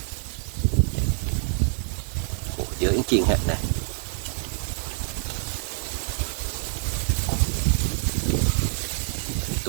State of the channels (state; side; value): silent; left; 61 dB below the other